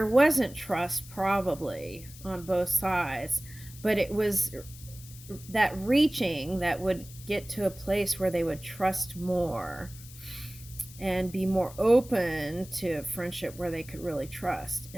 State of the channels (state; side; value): noise; left; hiss, 18 dB below the sound